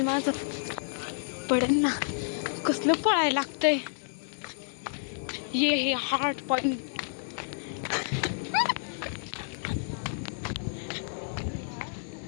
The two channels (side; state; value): right; silent; digital silence